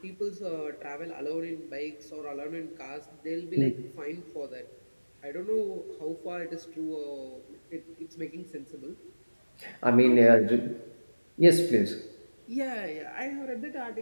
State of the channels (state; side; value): inverted; both; correlation -1.00